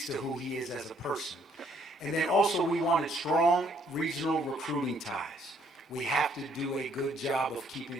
to who he is as a person. And then also we wanted strong regional recruiting ties. We have to do a good job of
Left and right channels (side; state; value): both; normal; correlation 0.66